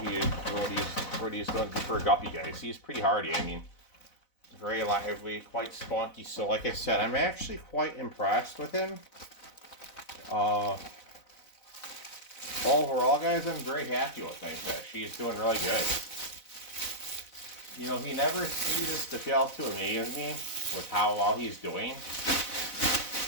doing for a guppy, guys. He's pretty hardy. I mean, very lively, quite spunky. So like I said, I'm actually quite impressed with him. Overall, guys, I'm very happy with my fish. He's doing really good. You know, he never ceases to fail to amaze me with how well he's doing.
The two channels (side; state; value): right; late; 4.0 ms